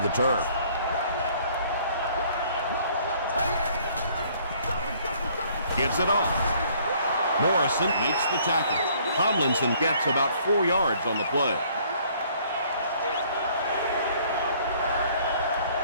turf. Gives it off. Morrison makes the tackle. Tomlinson gets about 4 yards on the play.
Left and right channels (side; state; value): both; inverted; correlation -0.60